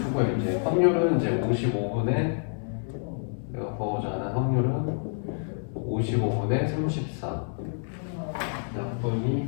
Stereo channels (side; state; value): right; silent; 58 dB below the other